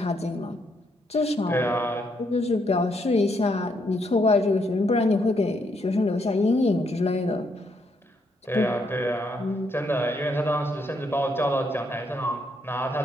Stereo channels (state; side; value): normal; both; correlation 0.75